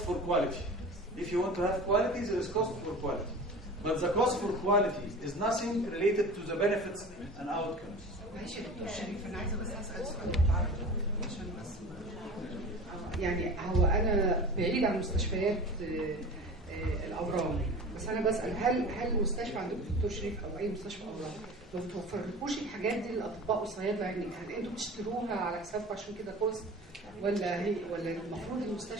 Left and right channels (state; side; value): normal; both; correlation 0.37